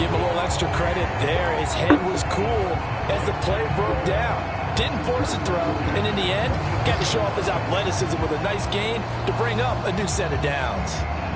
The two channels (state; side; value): identical; both; correlation 1.00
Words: him a little extra credit there. His head was cool as the play broke down. Didn't force a throw, and in the end, got to show off his athleticism with a nice gain to bring up a new set of downs.